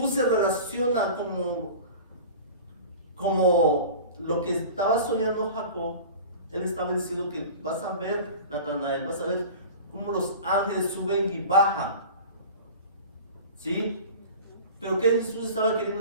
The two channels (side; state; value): both; inverted; correlation -0.37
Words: se relaciona como lo que estaba soñando Jacob. Él estaba diciendo que vas a ver, Natanael, vas a ver cómo los ángeles suben y bajan, ¿sí? Pero ¿qué Jesús estaba